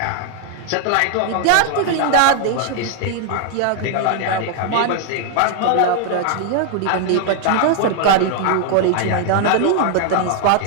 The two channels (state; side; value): different; both; correlation 0.00